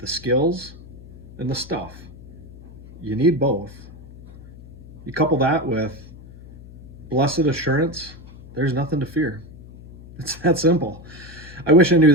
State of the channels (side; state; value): left; noise; hum, 18 dB below the sound